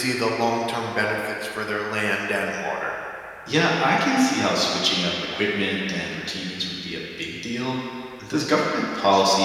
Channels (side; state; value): both; identical; correlation 1.00